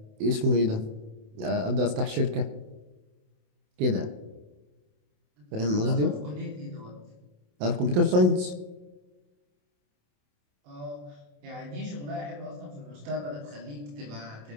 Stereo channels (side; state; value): left; late; 28 ms